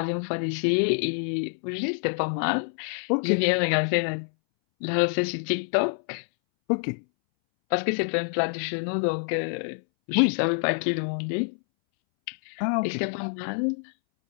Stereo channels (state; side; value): silent; right; 61 dB below the other